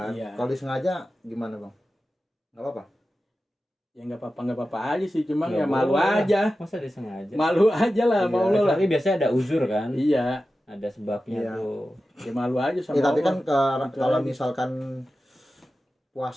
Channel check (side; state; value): both; normal; correlation 0.93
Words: Iya. Kalau disengaja gimana Bang? Nggak apa-apa. Ya nggak apa-apa aja sih, cuma Nggak ya malu boleh. aja. Masa disengaja? Malu aja lah, Iya, mau lo lah. Tapi biasanya ada uzur kan? Iya, Ada sebabnya Iya. tuh. ya malu aja sama Ya, tapi Allah. kan Gitu kalau aja. misalkan